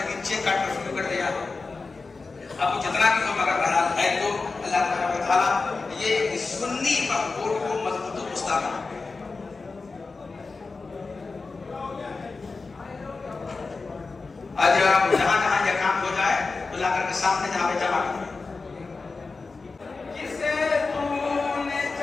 نیچے کاٹ کر شروع کر دیا. اب جتنا بھی ہو مگر بہرحال ہے تو اللہ تعالیٰ یہ سنی مقبول کو مضبوط و مستحکم. آج جہاں جہاں یہ کام ہو جائے تو لا کر کے سامنے جہاں پہ جمع کریں. جسے تو نے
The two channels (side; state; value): right; quieter; 4.1 dB